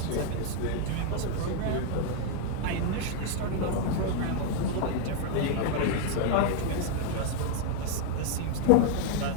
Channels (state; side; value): different; both; correlation 0.00